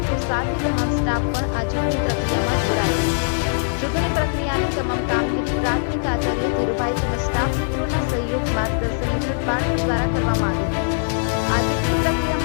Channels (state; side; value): silent; right; digital silence